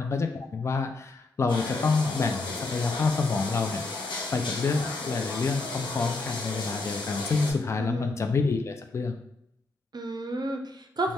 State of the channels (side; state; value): right; quieter; 3.4 dB